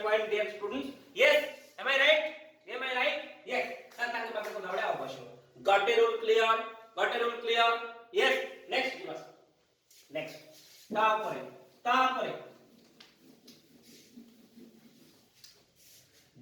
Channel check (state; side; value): identical; both; correlation 1.00